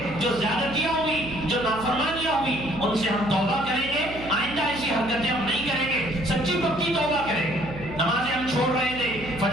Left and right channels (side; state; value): right; noise; hum, 12 dB below the sound